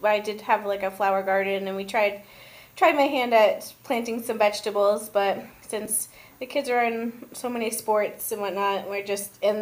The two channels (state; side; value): identical; both; correlation 1.00